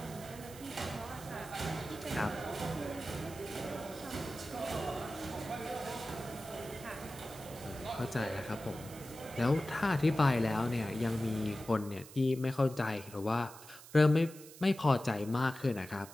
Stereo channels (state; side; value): noise; right; hiss, 17 dB below the sound